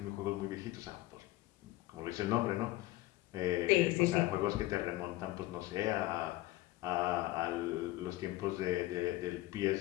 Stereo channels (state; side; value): quieter; right; 17.5 dB